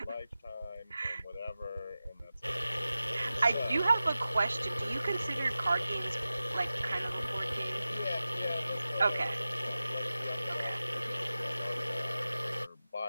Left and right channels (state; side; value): inverted; both; correlation -0.95